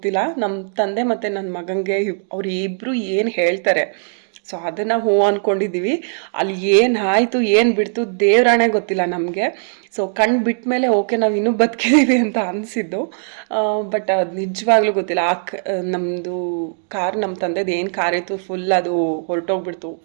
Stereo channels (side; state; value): left; silent; digital silence